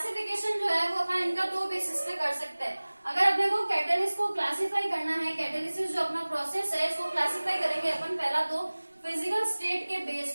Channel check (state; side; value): inverted; both; correlation -1.00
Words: जो है वो अपन इनका दो बेसिस पे कर सकते हैं। अगर अपने को कैटलिस्ट को क्लासिफाई करना है, कैटलिसिस जो अपना प्रोसेस है इसको क्लासिफाई करेंगे अपन पहला तो फिजिकल स्टेट के